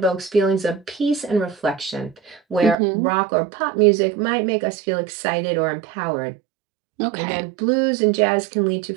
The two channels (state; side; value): drops out; left; at 2.8 s